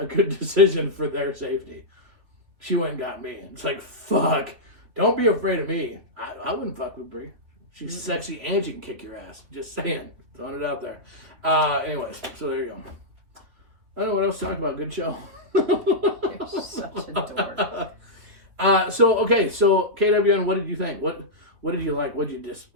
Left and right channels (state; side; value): late; left; 3.4 ms